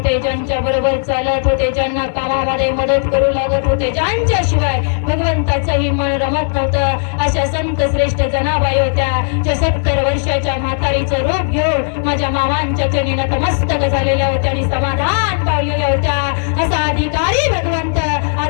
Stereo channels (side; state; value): right; silent; 58 dB below the other